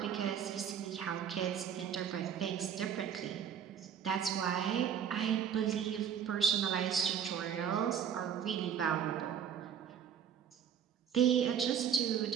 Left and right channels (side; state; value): left; quieter; 8.4 dB